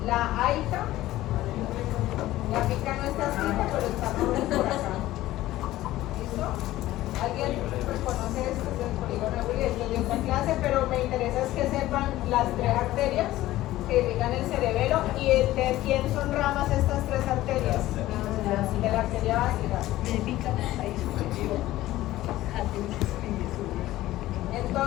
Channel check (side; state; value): right; quieter; 15.7 dB